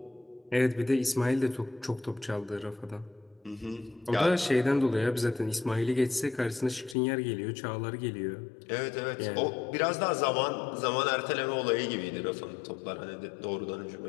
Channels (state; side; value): drops out; right; at 7.0 s